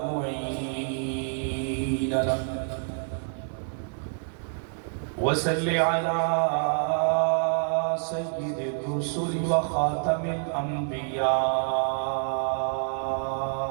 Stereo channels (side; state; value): left; silent; digital silence